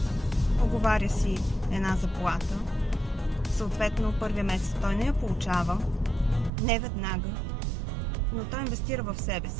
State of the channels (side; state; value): left; drops out; at 6.5 s